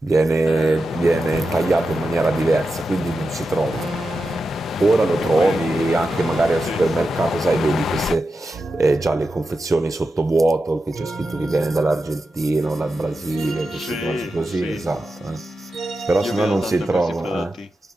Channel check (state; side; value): normal; both; correlation 0.90